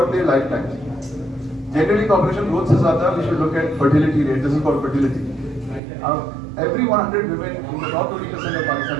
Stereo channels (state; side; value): drops out; left; at 5.8 s